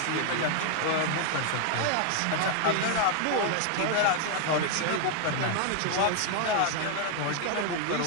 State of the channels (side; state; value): both; different; correlation 0.00